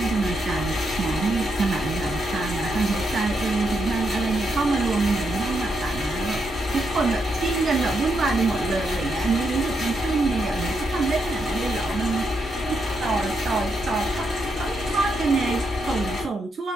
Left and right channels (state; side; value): normal; both; correlation 0.81